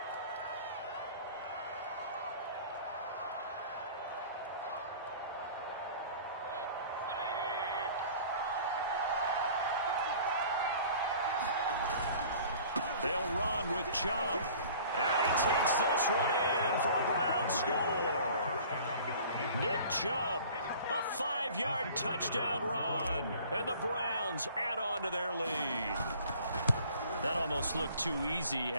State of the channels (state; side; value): inverted; both; correlation -0.48